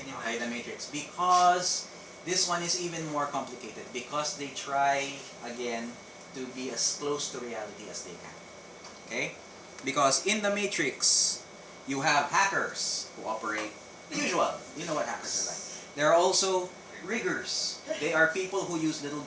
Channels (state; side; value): identical; both; correlation 1.00